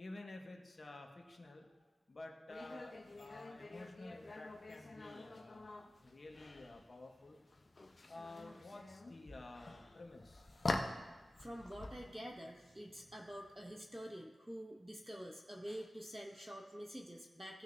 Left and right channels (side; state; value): both; normal; correlation 0.96